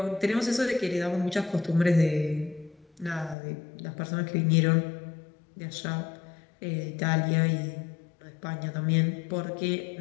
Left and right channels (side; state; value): right; drops out; at 3.4 s